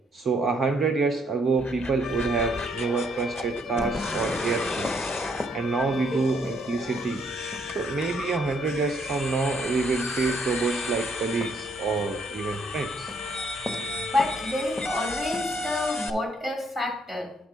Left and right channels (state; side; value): normal; both; correlation 0.69